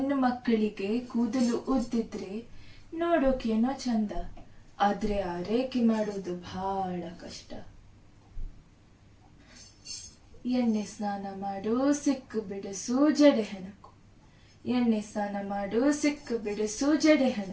ಮಕ್ಕಳಿಗೆ ಕೂದಲು ಉದ್ದಿದ್ರೆ ನೋಡೋಕೇನೋ ಚಂದ, ಆದ್ರೆ ಆರೈಕೆ ಮಾಡೋದು ಬಹಳ ಕಷ್ಟ. ಎಣ್ಣೆ ಸ್ನಾನ ಮಾಡು, ಸಿಕ್ಕು ಬಿಡಿಸು, ಜಡೆ ಹೆಣಕು. ಎಣ್ಣೆ ಸ್ನಾನ ಮಾಡು, ಸಿಕ್ಕು ಬಿಡಿಸು, ಜಡೆ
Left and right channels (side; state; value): both; identical; correlation 1.00